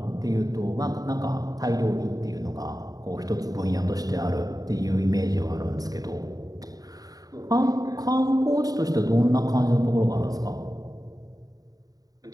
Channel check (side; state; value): left; late; 0.18 ms